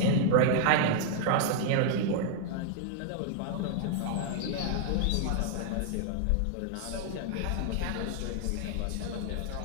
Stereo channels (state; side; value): different; both; correlation 0.00